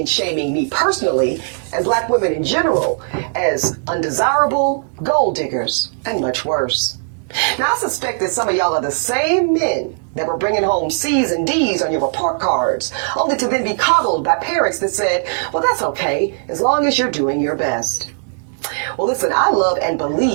shaming me personally and black women in general as undesirable, gold diggers, and much worse. Now, I suspect that some of y'all are the same men that were bringing home C's and D's on your report cards, only to then be coddled by parents that said, well, that's okay, as long as you're doing your best. Well, listen, I love and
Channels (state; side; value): silent; left; 67 dB below the other